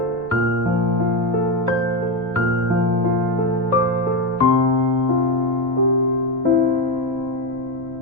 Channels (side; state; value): right; noise; rumble, 22 dB below the sound